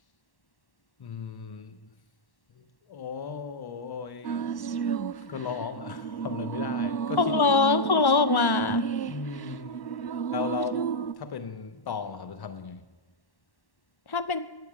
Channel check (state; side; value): late; right; 1.1 ms